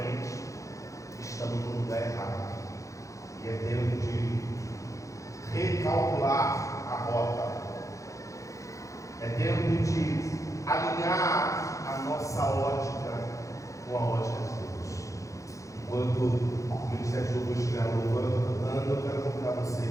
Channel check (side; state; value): right; late; 0.15 ms